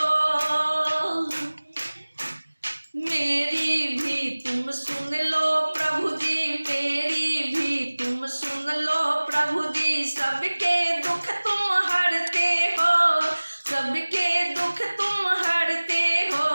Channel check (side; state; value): both; inverted; correlation -1.00